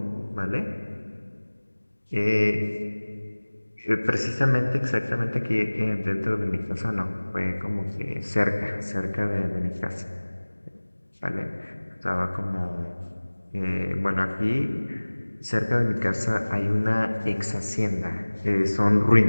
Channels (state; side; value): inverted; both; correlation -1.00